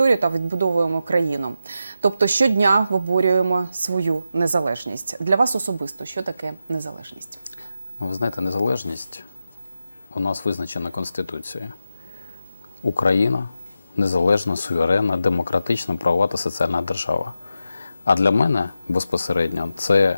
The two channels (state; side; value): inverted; both; correlation -0.88